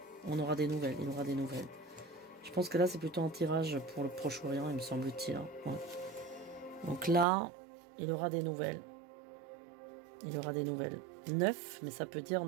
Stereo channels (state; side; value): drops out; left; at 7.2 s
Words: On aura des nouvelles, il aura des nouvelles. Je pense que là, c'est plutôt un tirage pour le Proche-Orient, il me semble-t-il. Hein. Ouais. Donc là, il aura des nouvelles. Il aura des nouvelles. 9, mais ça peut dire